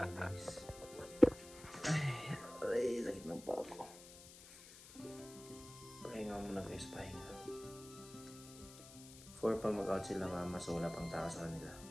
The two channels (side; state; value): left; noise; hiss, 17 dB below the sound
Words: Ay, sakit ng paa ko. Pahinga muna guys, pahinga. 4 pa mag-out sila mama, so wala pang tao sa kanila.